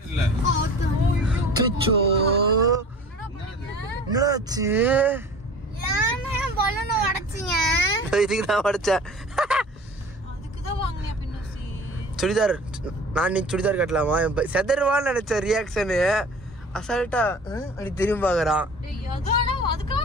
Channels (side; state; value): both; normal; correlation 0.42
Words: சுச்சோ என்னாச்சு? இதுக்குதான் உடைச்சேன். சுடிதார் நான் இன்னைக்கு சுடிதார் கட்டலாமா? செதர்வான்னு நினைச்ச ரியாக்ஷனு அசால்ட்டா அப்படி திரும்பி பாக்குறான்.